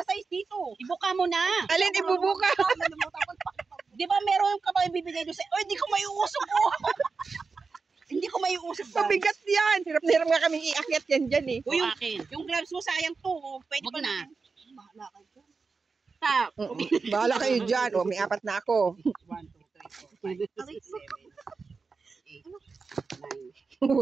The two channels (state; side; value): quieter; left; 4.6 dB